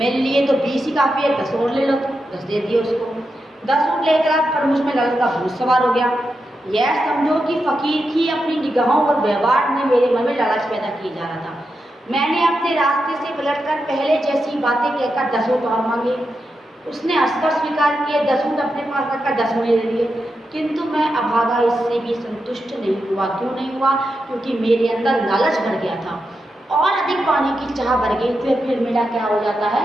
लिए तो 20 ही काफ़ी है, 10 और ले लो। तो 10 दे दिए उसको। 10 ऊँट लेकर पर मुझ में लालच का भूत सवार हो गया। यह समझो कि फकीर की अपनी निगाहों और व्यवहार में मेरे मन में लालच पैदा किया जा रहा था। मैंने अपने रास्ते से पलटकर पहले जैसी बातें कहकर 10 ऊँट और मांगे। उसने हंसकर स्वीकार किए, 10 ऊँट अपने पास रखकर 10 मुझे दे दिए। किंतु मैं अभागा इससे भी संतुष्ट नहीं हुआ। क्यों नहीं हुआ? क्योंकि मेरे अंदर लालच भर गया था और अधिक पाने की चाह भर गई। फिर मेरा क्या हो जाता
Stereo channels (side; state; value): both; normal; correlation 0.87